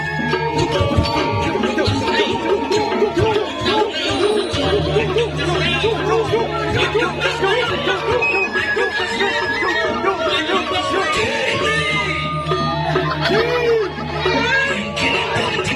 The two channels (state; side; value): identical; both; correlation 1.00